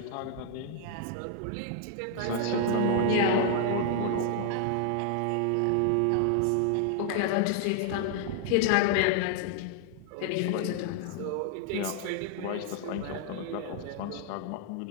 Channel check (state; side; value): different; both; correlation 0.00